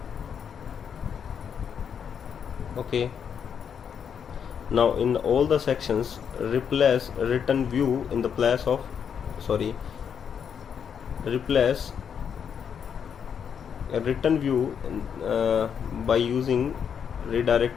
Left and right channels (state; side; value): quieter; right; 7.5 dB